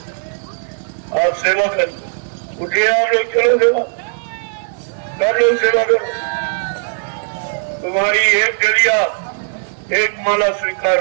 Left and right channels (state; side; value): silent; left; 68 dB below the other